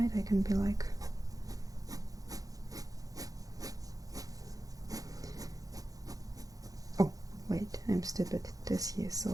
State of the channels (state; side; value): late; left; 0.17 ms